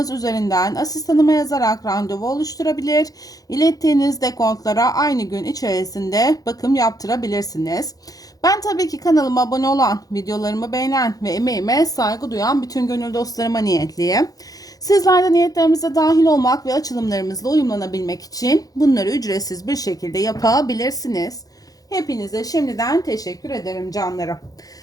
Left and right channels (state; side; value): late; right; 0.18 ms